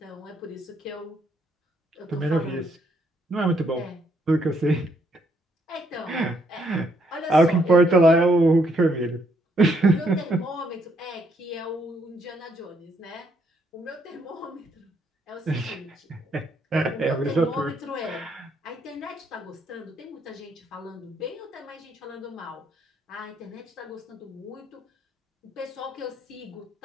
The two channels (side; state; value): both; normal; correlation 0.72